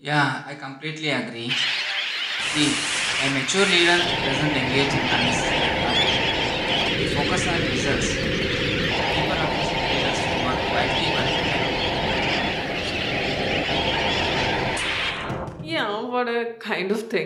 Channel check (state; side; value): identical; both; correlation 1.00